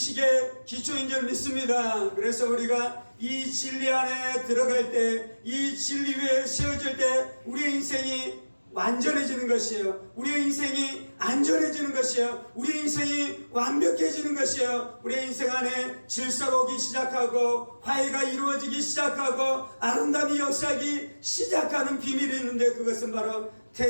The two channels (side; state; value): both; inverted; correlation -1.00